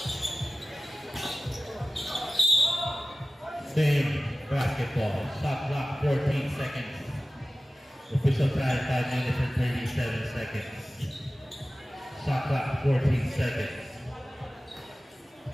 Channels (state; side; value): normal; both; correlation 0.96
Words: Same basketball. Shot clock 14 seconds. Official time 5 minutes and 37 seconds. Shot clock 14 seconds.